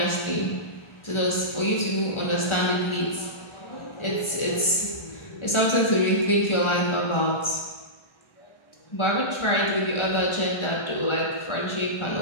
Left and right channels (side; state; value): right; late; 1.4 ms